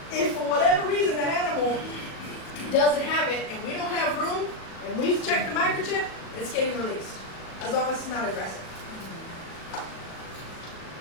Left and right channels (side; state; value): right; late; 38 ms